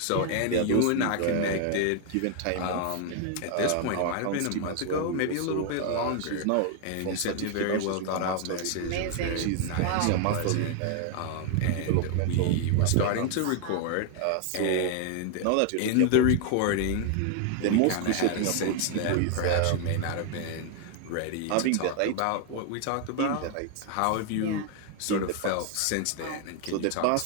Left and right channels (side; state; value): both; different; correlation 0.00